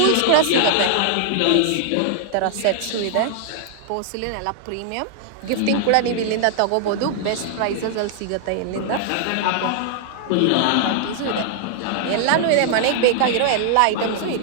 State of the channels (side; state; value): both; different; correlation -0.01